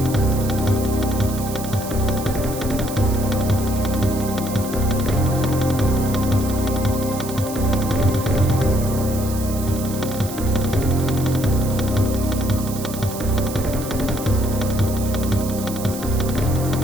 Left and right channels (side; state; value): right; noise; hiss, 11 dB below the sound